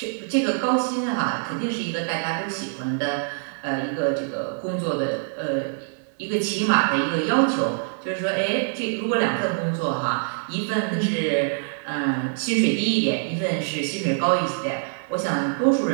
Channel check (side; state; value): left; silent; 62 dB below the other